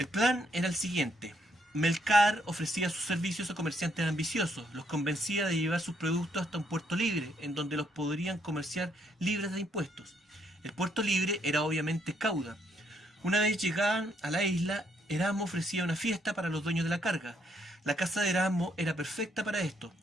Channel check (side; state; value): both; normal; correlation 0.72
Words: plan era el siguiente. Melcar ofrecía sus servicios a comerciantes ambiciosos, los convencía de llevar sus productos hasta un puerto libre, en donde los podrían comerciar libres de impuestos. El puerto libre era obviamente Cauda. Una vez llegaban a la isla, Erasmo ofrecía una fiesta para los dueños de la carga. La casa de Erasmo era perfecta para esto,